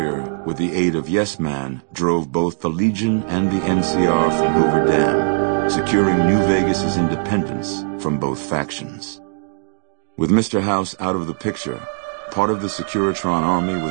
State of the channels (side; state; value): left; silent; 61 dB below the other